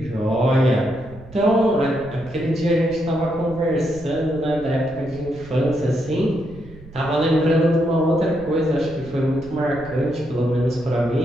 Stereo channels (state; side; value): noise; right; rumble, 19 dB below the sound